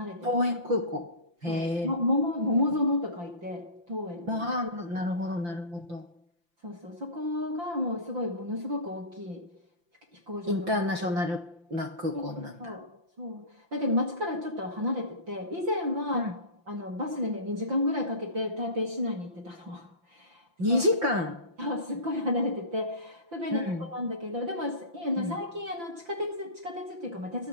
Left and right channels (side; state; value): left; late; 5.8 ms